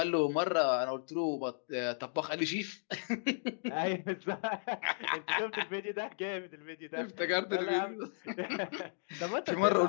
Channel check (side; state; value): right; silent; digital silence